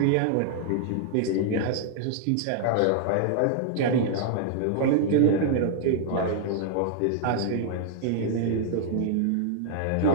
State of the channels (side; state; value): both; different; correlation 0.00